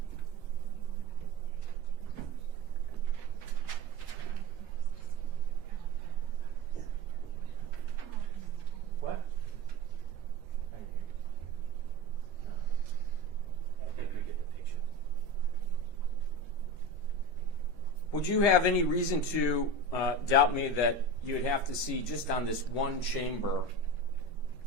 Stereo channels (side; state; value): left; late; 13 ms